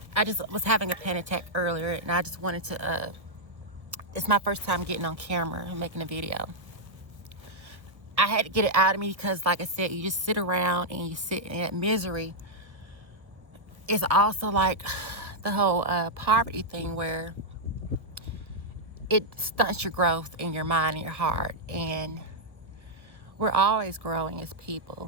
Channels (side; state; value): left; late; 1.2 ms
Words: I just was having a panic attack earlier, and I just wanted to it's my first time getting on camera and making a video. I had to get it out of me because, like I said, you just sit around and you sit in that misery. It's also like the whole poverty thing, where it stunts your growth in your mind and your heart. And we're always growing as